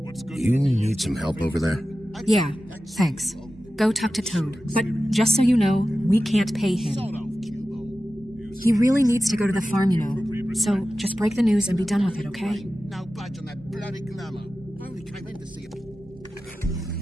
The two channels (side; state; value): both; normal; correlation 0.94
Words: You need some help over there? Yeah, thanks. Go talk to Toad. But just so you know, we can't pay him. He really needs to go to the farm, you know. So just break the news and be done with it, okay? No budge on that bloody glamour. I only came in to see it.